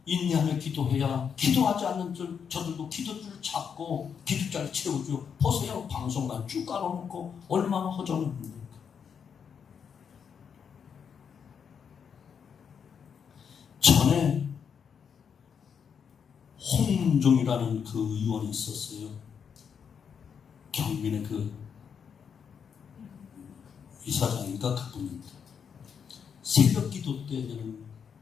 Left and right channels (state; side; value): quieter; right; 7.0 dB